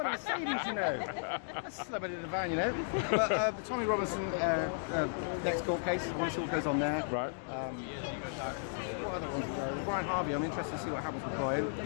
a Mercedes, you know. Celebrity in the van, you know. But the Tommy Robinson next court case, I want to see what goes on there. Right. What other ones? The Brian Harvey, I'm interested to see what happens with Brian.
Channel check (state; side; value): silent; right; digital silence